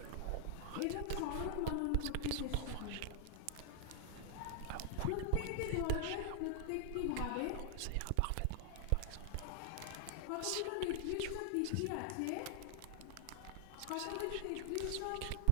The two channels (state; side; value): different; both; correlation 0.00